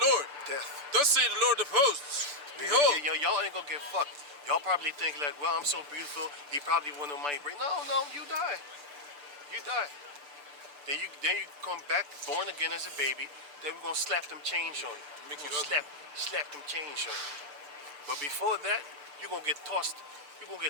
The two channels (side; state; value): left; late; 6.8 ms